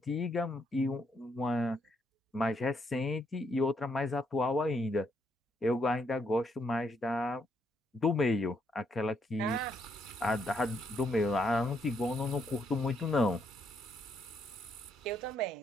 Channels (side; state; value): both; normal; correlation 0.75